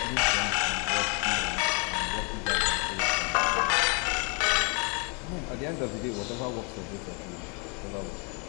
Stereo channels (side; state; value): right; quieter; 34.6 dB